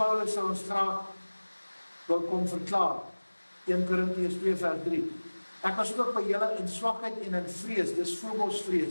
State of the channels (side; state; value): both; inverted; correlation -1.00